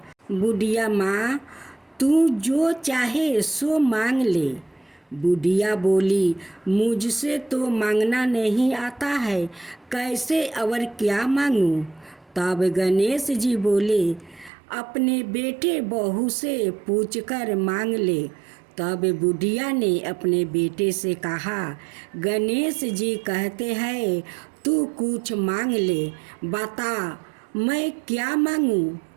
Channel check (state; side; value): drops out; left; at 14.5 s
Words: बुढ़िया माँ, तू जो चाहे सो मांग ले। बुढ़िया बोली, मुझसे तो मांगना नहीं आता है, कैसे और क्या मांगूं? तब गणेश जी बोले, अपने बेटे बहू से पूछकर मांग ले। तब बुढ़िया ने अपने बेटे से कहा, गणेश जी कहते हैं तू कुछ मांग ले, बता मैं क्या मांगूं?